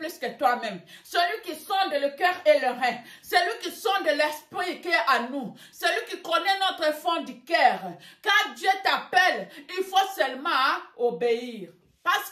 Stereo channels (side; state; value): both; identical; correlation 1.00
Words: que toi-même. Celui qui sonde le cœur et le rein. Celui qui sonde l'esprit qui est à nous. Celui qui connaît notre fond du cœur. Quand Dieu t'appelle, il faut seulement obéir. Parce